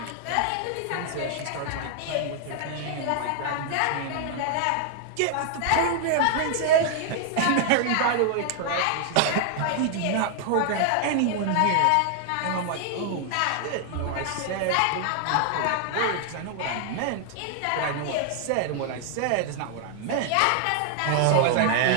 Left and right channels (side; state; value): both; different; correlation 0.00